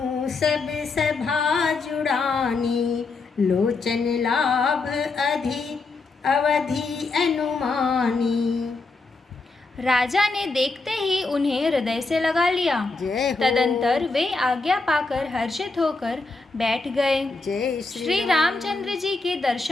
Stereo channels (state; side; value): quieter; right; 3.8 dB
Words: सब सभा जुड़ानी, लोचन लाभ अवधि अनुमानी। राजा ने देखते ही उन्हें हृदय से लगा लिया। तदंतर वे आज्ञा पाकर हर्षित होकर बैठ गए। जय श्री रामचंद्र जी के